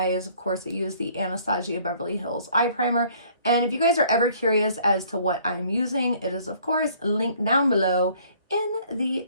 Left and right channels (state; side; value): inverted; both; correlation -0.58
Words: Of course, I used the Anastasia Beverly Hills eye primer. And if you guys are ever curious as to what I'm using, it is, of course, linked down below in the